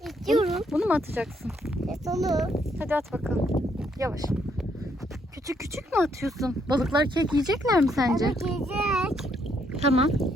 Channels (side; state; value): both; normal; correlation 0.72